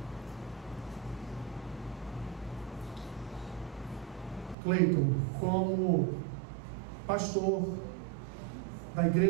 Cleiton, como pastor da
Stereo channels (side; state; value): left; drops out; at 4.5 s